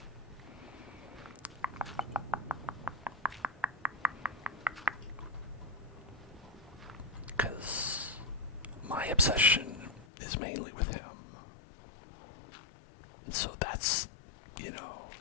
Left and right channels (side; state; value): right; drops out; at 10.1 s